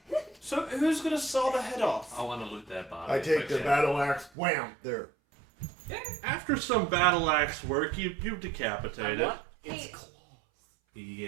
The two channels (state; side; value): drops out; left; at 4.3 s